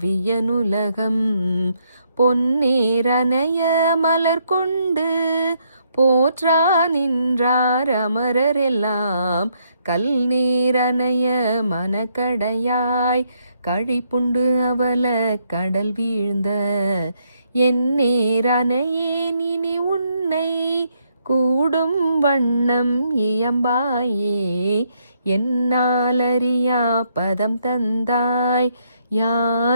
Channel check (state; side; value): inverted; both; correlation -0.74